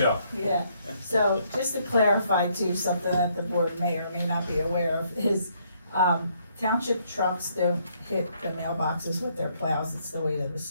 Yeah, so just to clarify too, something that the board may or may not be aware of is, township trucks don't hit the mailboxes with their plows. It's the weight of the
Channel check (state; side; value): inverted; both; correlation -0.70